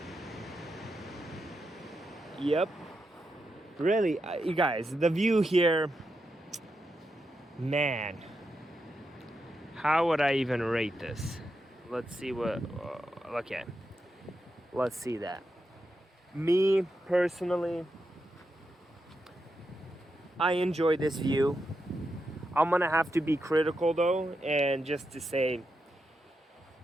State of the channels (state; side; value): normal; both; correlation 0.86